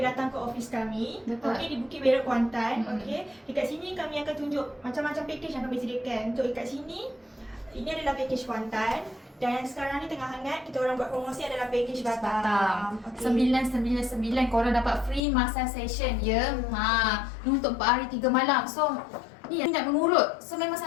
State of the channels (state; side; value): drops out; right; at 15.2 s